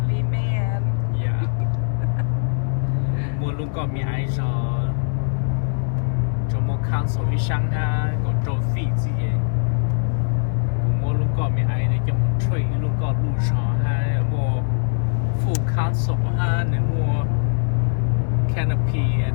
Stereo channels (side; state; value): right; silent; 64 dB below the other